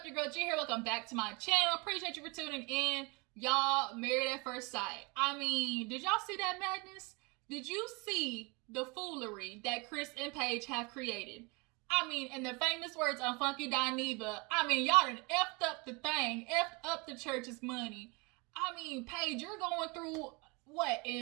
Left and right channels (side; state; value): left; quieter; 28.2 dB